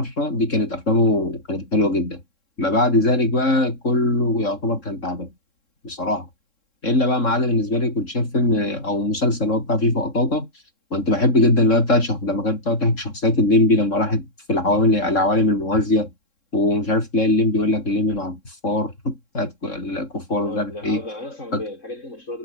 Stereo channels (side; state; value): right; late; 3.7 ms